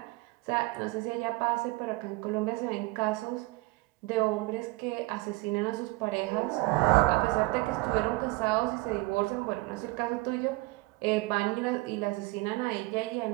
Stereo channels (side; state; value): left; quieter; 21.5 dB